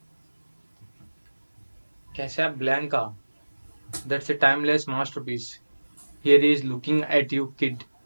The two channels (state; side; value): inverted; both; correlation -1.00